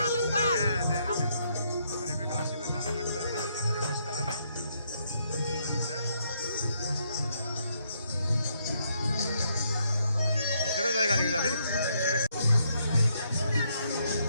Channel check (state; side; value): inverted; both; correlation -0.74